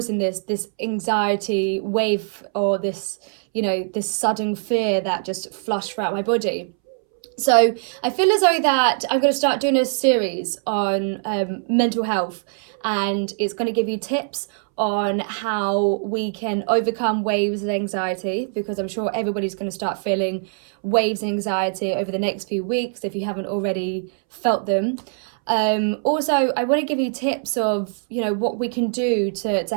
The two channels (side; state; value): left; silent; 64 dB below the other